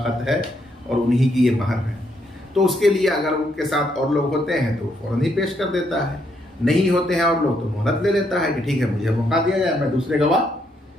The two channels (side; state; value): both; normal; correlation 0.75